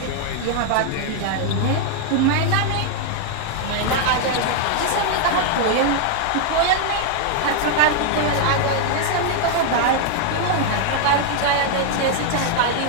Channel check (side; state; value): both; different; correlation 0.00